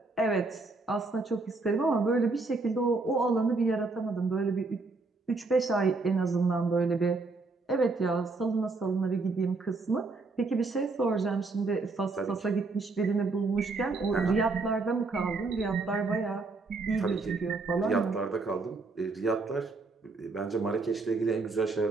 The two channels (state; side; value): quieter; left; 3.7 dB